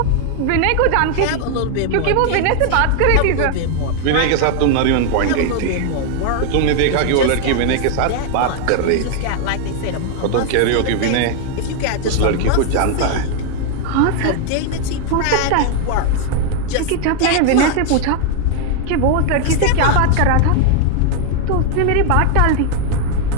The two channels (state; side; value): different; both; correlation 0.00